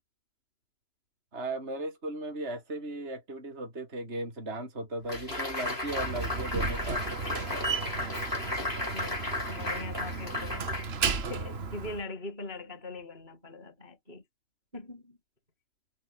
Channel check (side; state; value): left; late; 3.0 ms